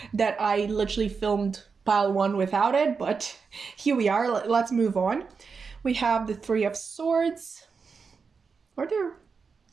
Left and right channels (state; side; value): quieter; left; 5.3 dB